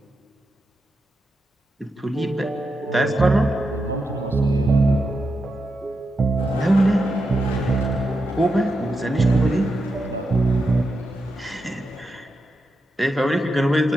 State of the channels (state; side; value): normal; both; correlation 0.87